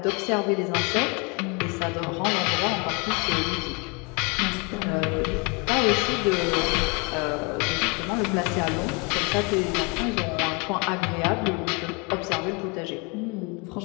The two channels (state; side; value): quieter; right; 30.7 dB